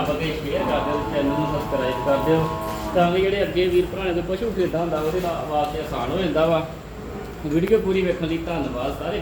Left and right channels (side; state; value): both; identical; correlation 1.00